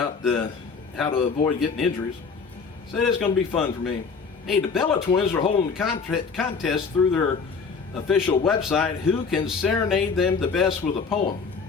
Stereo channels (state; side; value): quieter; right; 5.2 dB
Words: how to avoid getting injuries. He said it's going to be fun for me. Hey, the Bella Twins are holding the contest through their official website. Who can serenade them the best with a poem?